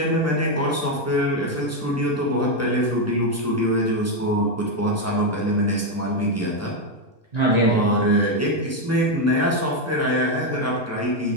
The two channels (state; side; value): normal; both; correlation 0.05